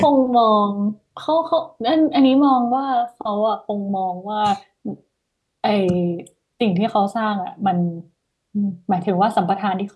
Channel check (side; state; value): both; identical; correlation 1.00